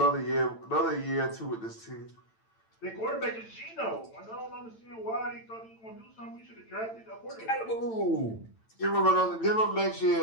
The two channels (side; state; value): right; late; 8.9 ms